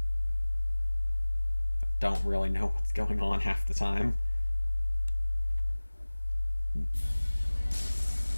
I don't really know what's going on half the time.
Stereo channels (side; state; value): both; inverted; correlation -1.00